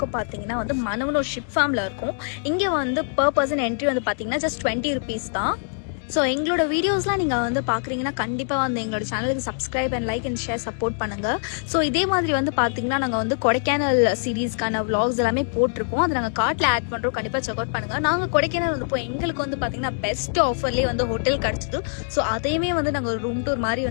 பார்த்தீங்கன்னா மனவனூர் ஷிப் ஃபார்மில் இருக்கும். இங்கே பர் பர்சன் என்ட்ரி பார்த்தீங்கன்னா ஜஸ்ட் 20 rupees தான். ஸோ எங்களோட வீடியோஸ்லாம் நீங்கள் பார்க்குறீங்கன்னா கண்டிப்பாக எங்களோட சேனலுக்கு subscribe and like and share support பண்ணுங்கள். ஸோ இதே மாதிரி பார்த்தீங்கன்னா நாங்கள் கொடைக்கானல் சீரீஸ்க்கான vlogs எல்லாமே போட்டிருக்கோம். அதை நாங்கள் கார்ட்டில் ஆட் பண்ணுறோம், கண்டிப்பாக செக் அவுட் பண்ணுங்கள். நாங்கள் கொடைக்கானல் போய் எங்களுக்கு பார்த்தீங்கன்னா பெஸ்ட் ஆஃபர்லேயே ஹோட்டல் கிடச்சிது. ஸோ அதையுமே நாங்கள் ஒரு ரூம் டூர்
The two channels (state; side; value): silent; right; digital silence